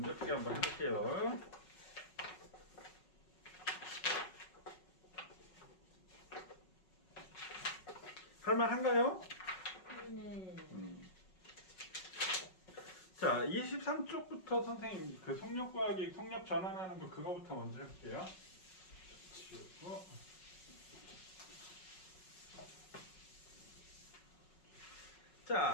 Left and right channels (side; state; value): right; late; 5.4 ms